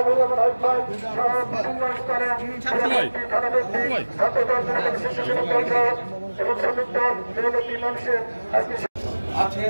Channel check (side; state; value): both; inverted; correlation -1.00